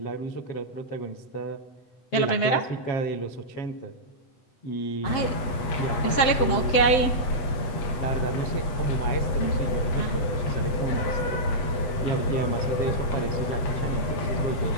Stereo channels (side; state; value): right; late; 7.7 ms